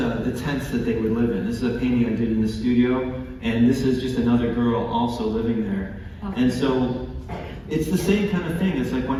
tents that they would live in. This is a painting I did in the studio, and this is just another girl also living there. Okay. And so it's the same kind of thing. It's like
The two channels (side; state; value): both; identical; correlation 1.00